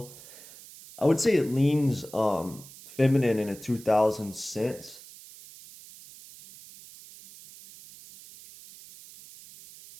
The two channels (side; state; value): right; noise; hiss, 19 dB below the sound